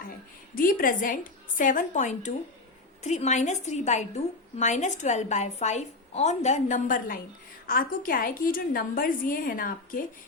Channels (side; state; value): right; quieter; 3.3 dB